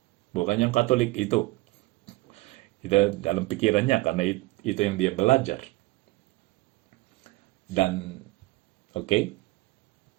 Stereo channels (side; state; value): left; quieter; 20.8 dB